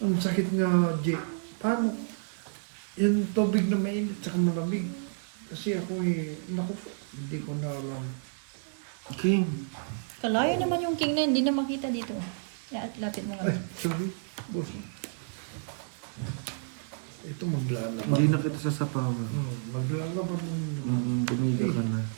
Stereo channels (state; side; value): silent; left; digital silence